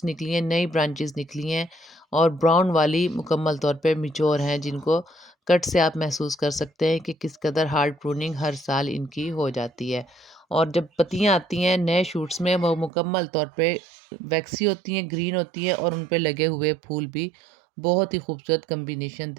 نکلی ہیں، نئی برانچز نکلی ہیں، اور براؤن والی مکمل طور پہ میچور ہیں، جن کو کٹ سے آپ محسوس کر سکتے ہیں کہ کس قدر ہارڈ پروننگ ہر سال ان کی ہو جاتی ہے۔ اور جب پتیاں آتی ہیں نئے شوٹس میں وہ مکمل طور پہ ویکسی ہوتی ہیں، گرین ہوتی ہیں، اور ان پہ لگے ہوئے پھول بھی بہت ہی خوبصورت کمبینیشن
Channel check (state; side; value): drops out; left; at 12.9 s